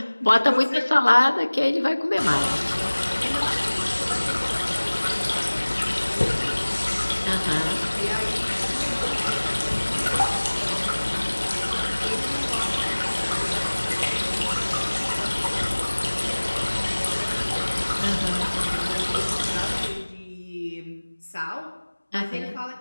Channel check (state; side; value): inverted; both; correlation -1.00